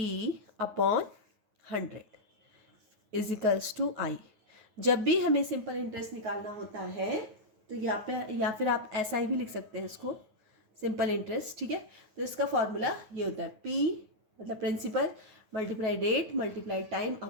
upon 100 is equals to I. जब भी हमें सिंपल इंटरेस्ट निकालना होता है तो यहाँ पे, या फिर आप ऐसा ही भी लिख सकते हैं इसको, सिंपल इंटरेस्ट, ठीक है। तो इसका फॉर्मूला ये होता है, P मतलब principal multiply rate multiply time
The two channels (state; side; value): late; left; 9.4 ms